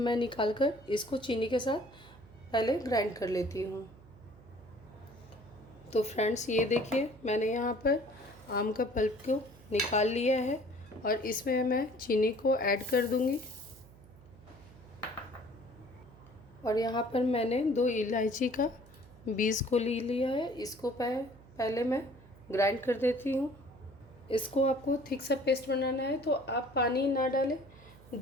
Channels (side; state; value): right; noise; hum, 22 dB below the sound